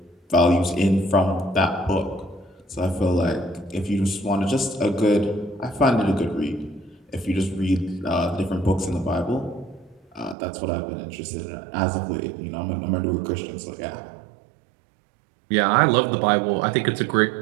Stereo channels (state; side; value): drops out; left; at 10.4 s